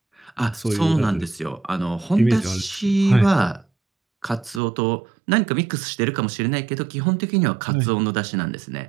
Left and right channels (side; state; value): left; drops out; at 4.6 s